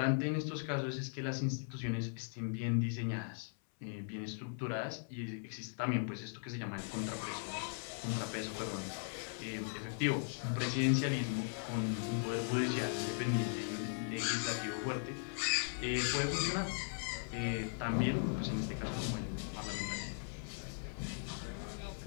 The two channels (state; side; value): silent; right; 52 dB below the other